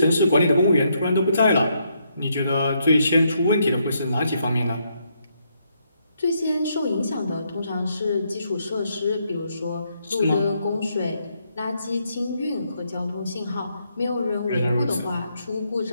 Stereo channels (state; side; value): inverted; both; correlation -0.76